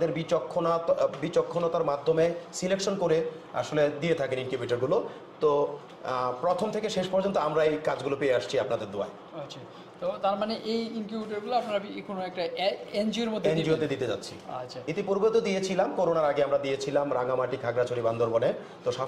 বিচক্ষণতার মাধ্যমে সিলেকশন করে আসলে দিয়ে থাকেন ইনকিউবেটরগুলো। তো প্রথম থেকে শেষ পর্যন্ত আমরা এই কাজগুলো পেয়ে আসছি আপনাদের দোয়ায়। আচ্ছা, তো তার মানে এই ইনকিউবেটরগুলো আপনারা কোনো একটা এনজিওতে দিতে যাচ্ছি। আচ্ছা, ইতিপূর্বে তো দিয়েছিলাম, করোনার আগে আমরা দিয়েছিলাম রাঙামাটি, খাগড়াছড়ি, বান্দরবনে। তো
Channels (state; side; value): identical; both; correlation 1.00